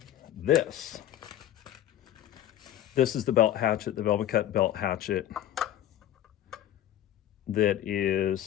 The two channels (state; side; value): quieter; right; 12.2 dB